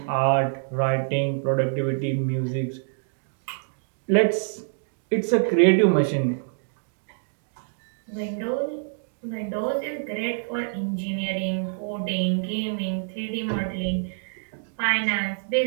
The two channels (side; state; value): left; silent; digital silence